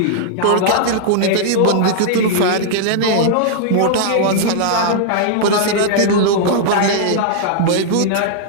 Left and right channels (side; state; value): both; different; correlation -0.01